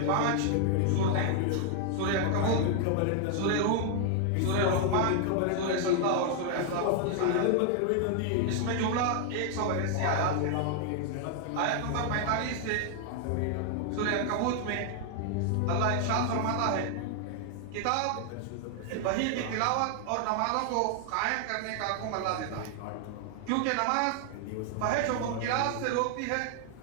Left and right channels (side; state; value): both; different; correlation 0.00